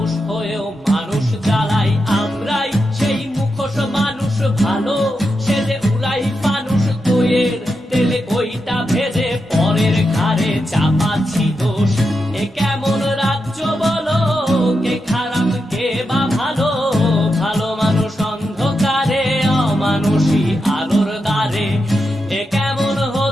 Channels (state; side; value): normal; both; correlation 0.87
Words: হয়েও মানুষ জ্বালাই। আমরাই সেই মুখোশ মানুষ ভালো, সেজে উড়াই মানুষ দইয়ের তেলে ওইটা ভেজে, পরের ঘাড়ে চাপাচ্ছি দোষ। এ কেমন রাজ্য বলো, কে খারাপ কে বা ভালো, ভালো মানুষ অন্ধকারে, অমানুষী আলোর দ্বারে। এ কেমন